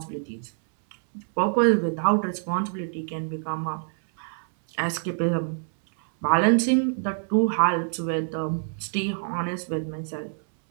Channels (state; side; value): silent; left; 60 dB below the other